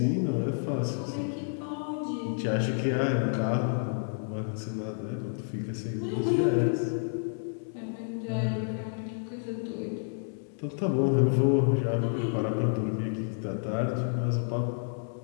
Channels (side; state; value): right; silent; digital silence